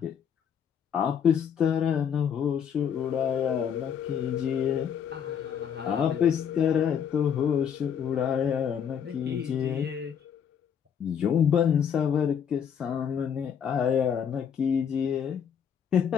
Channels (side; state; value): right; quieter; 8.0 dB